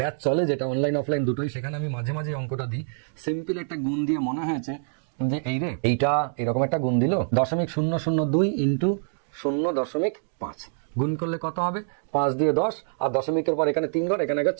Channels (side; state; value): left; silent; digital silence